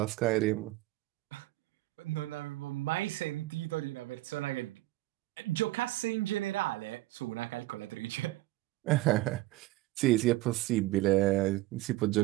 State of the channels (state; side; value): quieter; left; 18.0 dB